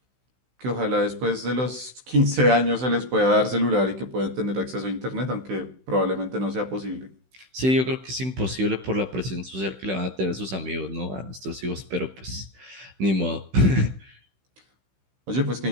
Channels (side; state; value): left; late; 16 ms